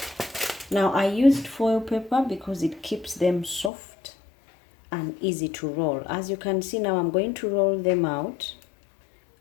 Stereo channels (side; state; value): right; drops out; at 3.7 s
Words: Now I used foil paper because it keeps them soft and easy to roll. As you can see now, I'm going to roll them out